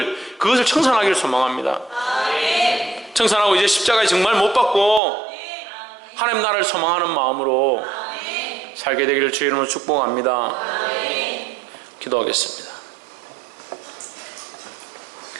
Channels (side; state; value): left; drops out; at 5.0 s